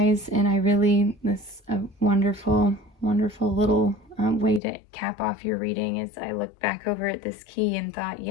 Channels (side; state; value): right; drops out; at 4.6 s